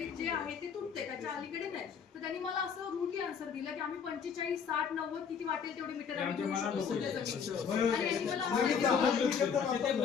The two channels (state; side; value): quieter; right; 6.7 dB